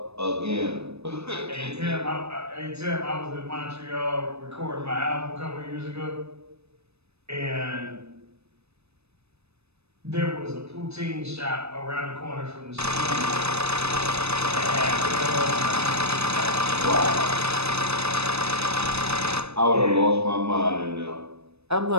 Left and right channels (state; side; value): late; left; 0.79 ms